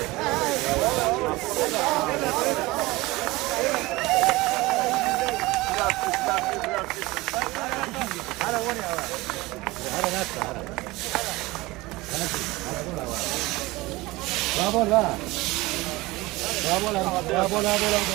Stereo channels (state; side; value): quieter; left; 20.9 dB